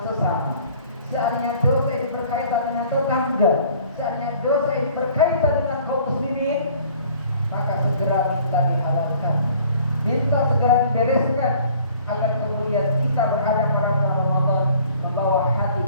sesama, seandainya dosa ini berkaitan dengan tetangga, seandainya dosa ini berkaitan dengan kaum muslimin, maka segera minta dihalalkan, minta segera dibereskan, agar kemudian kita berhadap pada Ramadan membawa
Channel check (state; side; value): inverted; both; correlation -0.53